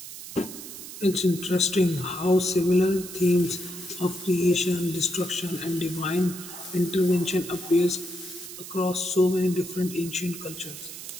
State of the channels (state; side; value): noise; right; hiss, 12 dB below the sound